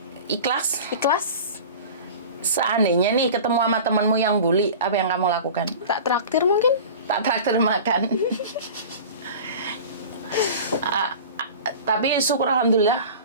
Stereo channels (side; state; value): both; inverted; correlation -0.37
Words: ikhlas. Seandainya nih ketemu sama temenmu yang bully, apa yang kamu lakukan? Tak traktir mungkin? Tak traktir makan. Tapi syukur alhamdulillah.